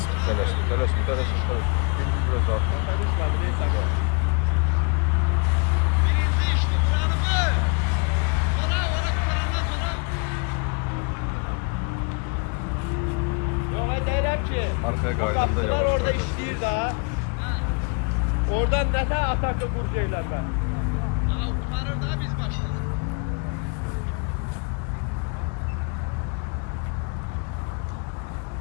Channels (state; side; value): quieter; right; 33.8 dB